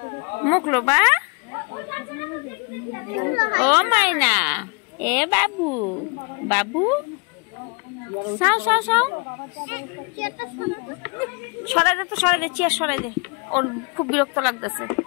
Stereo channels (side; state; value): right; quieter; 33.1 dB